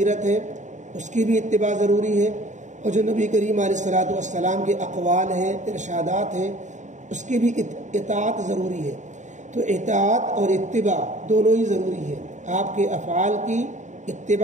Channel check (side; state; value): left; late; 0.35 ms